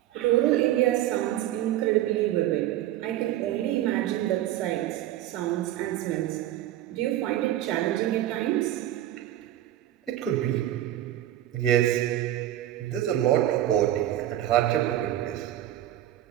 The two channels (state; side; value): quieter; left; 13.3 dB